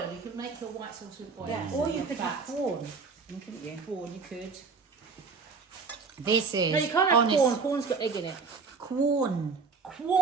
You could make your white sauce with oil. Yeah, or you could have corn. Couldn't you? corn. You could. This is No, you can't have honest. corn. Corn's got egg in it. Corn.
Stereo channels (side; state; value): left; quieter; 4.8 dB